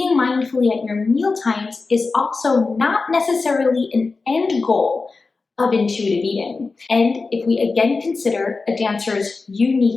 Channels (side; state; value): right; quieter; 4.0 dB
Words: mindfully at your meal times is also not necessarily an end goal of intuitive eating. And if we again consider a dancer's